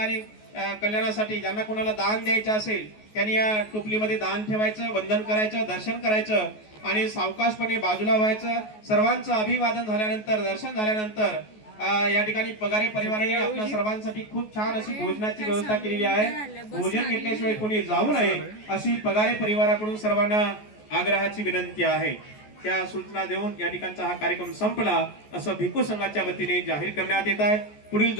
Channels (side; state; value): right; late; 14 ms